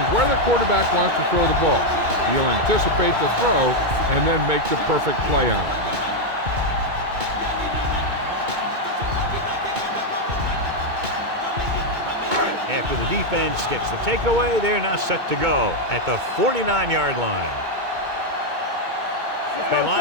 where the quarterback wants to throw the ball. He'll anticipate the throw and then make the perfect play on it. After the defense gets the takeaway, they're now set to go at the 49-yard line. They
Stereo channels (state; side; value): late; left; 2.2 ms